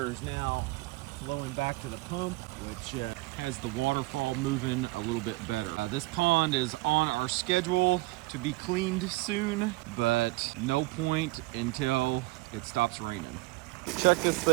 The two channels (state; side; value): quieter; left; 21.5 dB